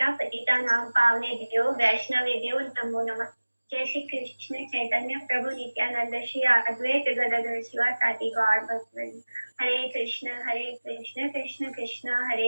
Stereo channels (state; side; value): inverted; both; correlation -1.00